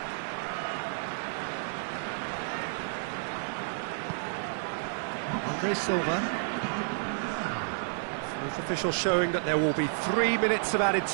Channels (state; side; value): silent; left; digital silence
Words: Andre Silva. Fourth official showing that there will be 3 minutes of added